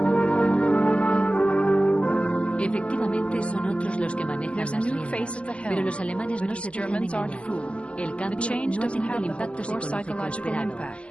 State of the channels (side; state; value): right; late; 0.056 ms